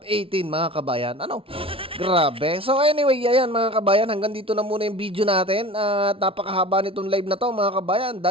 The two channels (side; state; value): left; late; 0.26 ms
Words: 18 mga kabayan? Ano? Grabe. So anyway, ayan mga kabayan, hanggang dito na muna yung video natin. At napakahaba nitong live na to mga kabayan.